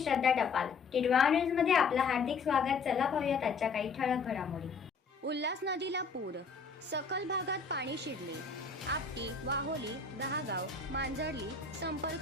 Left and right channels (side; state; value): right; quieter; 4.8 dB